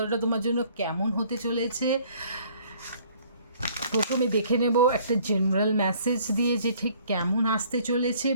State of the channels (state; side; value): inverted; both; correlation -0.58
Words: তোমার জন্য কেমন হতে চলেছে। প্রথমে দেখে নেব একটা জেনারেল মেসেজ দিয়ে যে ঠিক কেমন আসতে চলেছে।